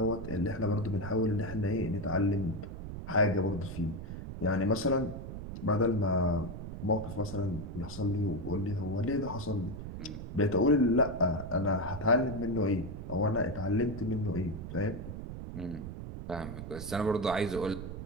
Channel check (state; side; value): noise; right; rumble, 8 dB below the sound